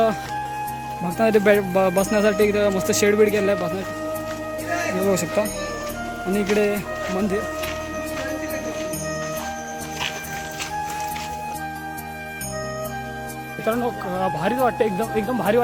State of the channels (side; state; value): both; identical; correlation 1.00